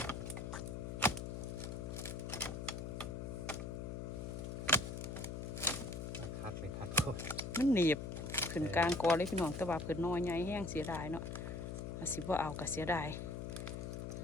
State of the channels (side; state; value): left; noise; hum, 5 dB below the sound